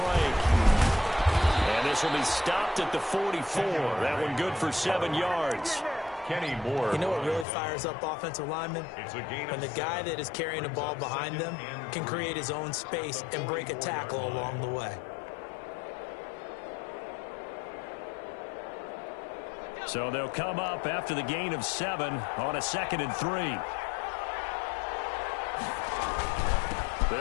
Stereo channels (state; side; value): drops out; right; at 7.5 s